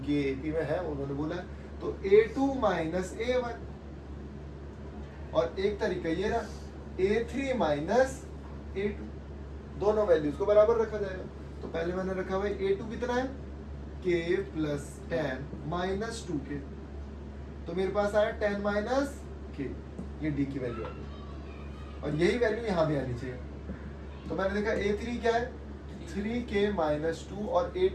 ये AP में है, उन्होंने बोला है। तो A2 माइनस A1, और एक तरीका ये रहा, A3 माइनस A2, दोनों वैल्यूज को बराबर रखा जाएगा। तो पहले मैंने रखा हुआ A2 कितना है, K प्लस 10 माइनस 2K, तो मेरे पास आया 10 माइनस K, ये D की वैल्यू आ गई। और यही वैल्यू यहाँ भी आनी चाहिए। तो मैंने देखा A3 क्या है, 3K माइनस 2, और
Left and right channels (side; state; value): both; identical; correlation 1.00